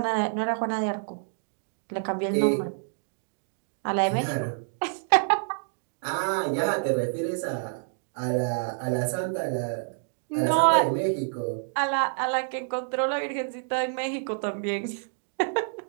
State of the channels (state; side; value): silent; left; digital silence